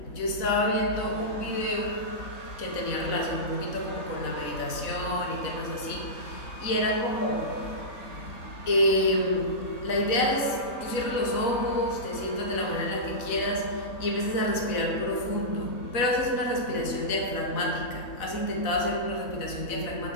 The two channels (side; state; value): right; late; 4.0 ms